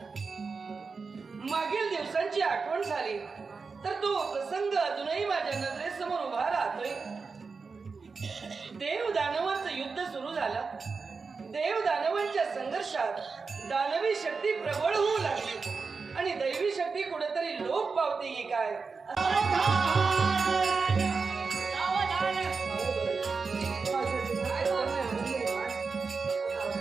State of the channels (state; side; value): quieter; left; 4.7 dB